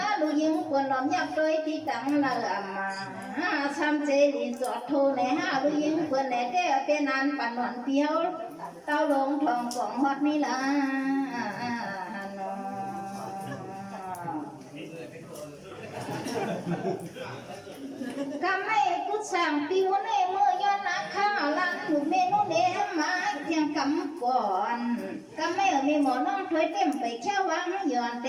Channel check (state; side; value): identical; both; correlation 1.00